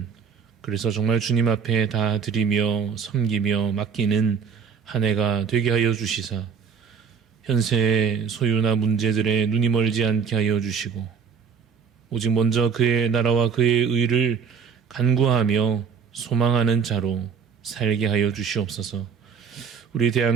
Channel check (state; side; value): quieter; left; 6.3 dB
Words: 그래서 정말 주님 앞에 다 드리며 섬기며 맡기는 한 해가 되게 하여 주시사 현세의 소유나 문제들에 눈이 멀지 않게 하여 주시고 오직 먼저 그의 나라와 그의 의를 간구하며 소망하는 자로 살게 하여 주시옵소서. 우리